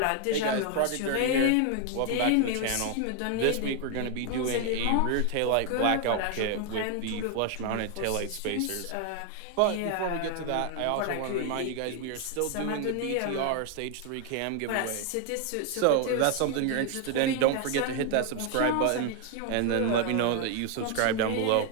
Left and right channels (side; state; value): both; different; correlation 0.01